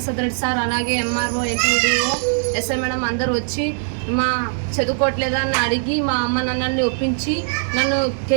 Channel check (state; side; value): silent; left; 65 dB below the other